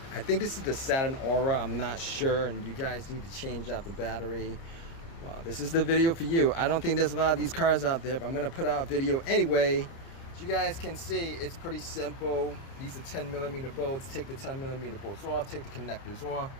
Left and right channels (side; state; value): right; late; 30 ms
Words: I think this is the Saturn Aura, I'm not sure, and you guys need to change out the battery. Well, this is the video for you. I don't think there's a lot of these cars out there, but I'm gonna put out a video anyway. As you guys can see, it's pretty simple. These are 10mm bolts. Take the 10mm bolts off, take the connectors off,